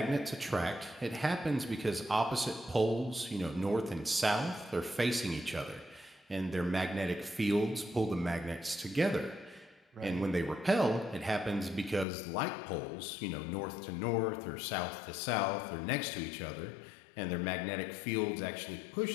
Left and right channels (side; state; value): right; drops out; at 12.1 s